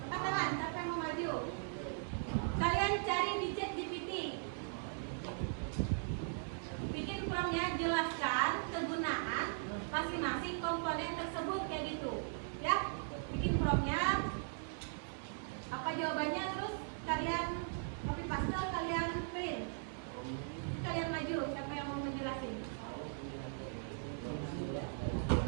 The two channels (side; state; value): left; silent; digital silence